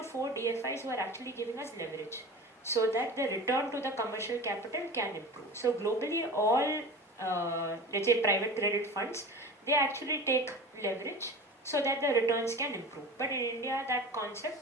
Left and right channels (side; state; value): both; normal; correlation 0.34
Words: 4 DFIs who are actually giving us leverage, so that the return to the commercial capital can improve. So globally, all let's say private credit funds, they actually take leverage so that the returns can improve. But in India, that